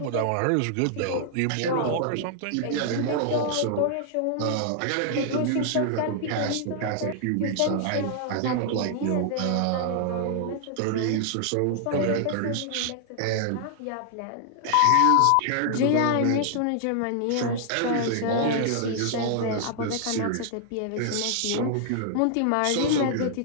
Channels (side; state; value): both; different; correlation -0.01